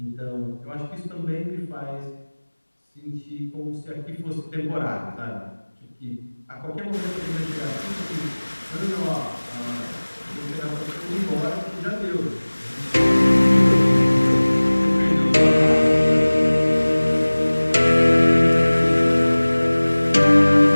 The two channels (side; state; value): both; inverted; correlation -1.00